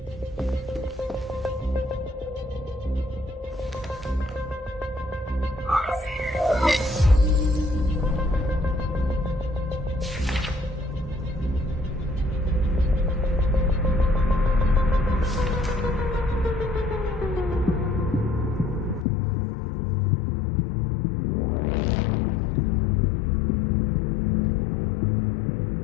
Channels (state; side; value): drops out; right; at 19.1 s